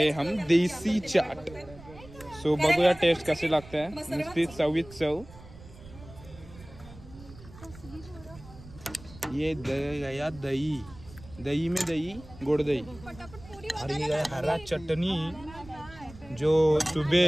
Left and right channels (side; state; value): right; noise; rumble, 18 dB below the sound